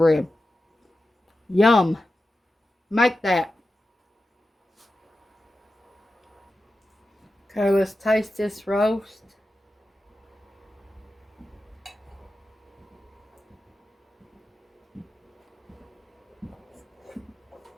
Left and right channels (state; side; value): normal; both; correlation 0.92